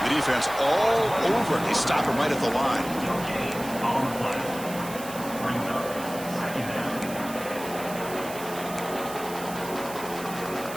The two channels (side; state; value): right; noise; hiss, 13 dB below the sound